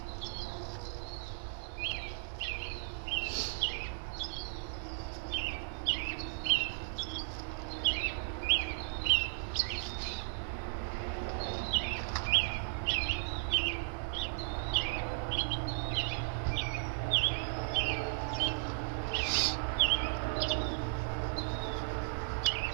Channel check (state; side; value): silent; left; digital silence